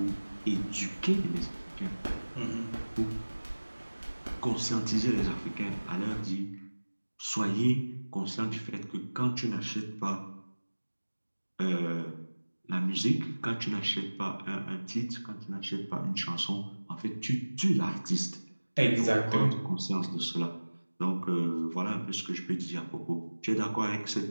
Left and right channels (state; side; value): inverted; both; correlation -1.00